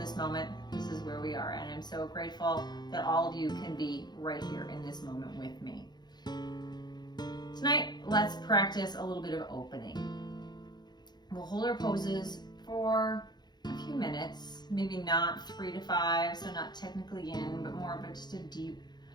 moment, this is where we are. And I'm so grateful that all of you can be right here in this moment with me. Tonight, let's practice a little bit of opening. We'll hold our poses for a few minutes, maybe not 3 to 5, so not technically in, but more of just a deep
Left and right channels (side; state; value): right; late; 0.21 ms